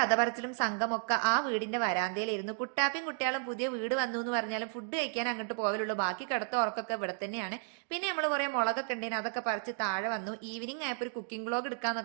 പറച്ചിലും സംഘമൊക്കെ ആ വീടിന്റെ വരാന്തയിലായിരുന്നു. കുട്ടാപ്പിയും കുട്ടികളും പുതിയ വീട് വന്നു എന്ന് പറഞ്ഞാലും ഫുഡ് കഴിക്കാൻ അങ്ങോട്ട് പോകലുള്ളൂ. ബാക്കി കിടത്ത ഉറക്കൊക്കെ ഇവിടെ തന്നെയാണ്. പിന്നെ നമ്മൾ കുറെ മുളകൊക്കെ ഉണ്ടേന്, അതൊക്കെ പറിച്ച് താഴെ വന്നു. ഈവനിങ് ആയപ്പോൾ ഒരു കുക്കിംഗ് വ്ളോഗ്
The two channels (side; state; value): left; silent; 56 dB below the other